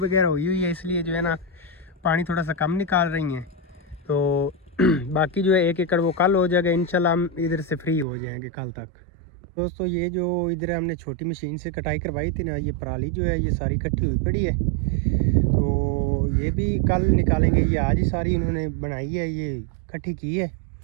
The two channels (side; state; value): left; drops out; at 8.1 s